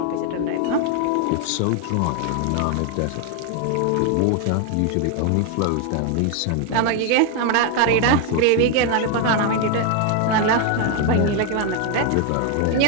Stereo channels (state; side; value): different; both; correlation 0.01